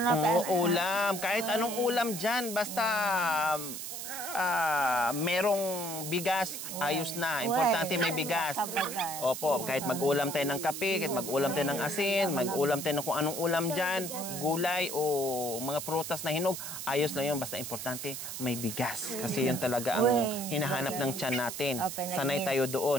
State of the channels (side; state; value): right; noise; hiss, 7 dB below the sound